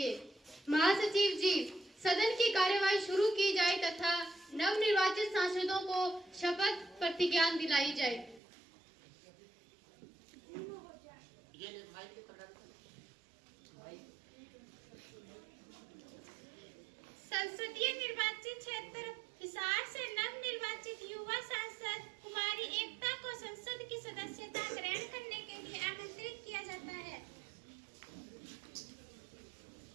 महासचिव जी, सदन की कार्यवाही शुरू की जाए तथा नवनिर्वाचित सांसदों को शपथ प्रतिज्ञान दिलाई जाए। संसदीय निर्वाचित क्षेत्र हिसार से नवनिर्वाचित युवा सांसद कुमारी एकता को संसद की सदस्यता ग्रहण करने के लिए आमंत्रित किया जाता है।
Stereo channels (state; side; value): drops out; left; at 8.4 s